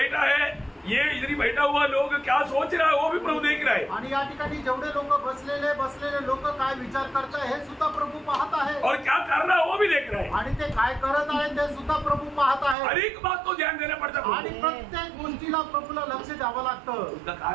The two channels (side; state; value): left; drops out; at 12.8 s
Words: है, ये इधर बैठा हुआ लोग क्या सोच रहा है वो भी प्रभु देख रहा है। आणि या ठिकाणी जेवढे लोक बसलेले लोक काय विचार करताय हे सुद्धा प्रभू पाहत आहे, और क्या कर रहा है वो भी देख रहा है, आणि ते काय करत आहे ते सुद्धा प्रभू पाहत आहे। हर एक बात को ध्यान देना पड़ता है आणि प्रत्येक गोष्टीला प्रभूला लक्ष द्यावं लागतं। उसका